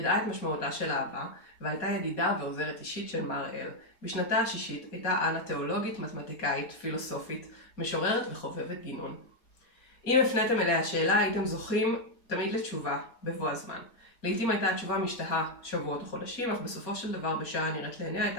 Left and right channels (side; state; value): right; late; 4.2 ms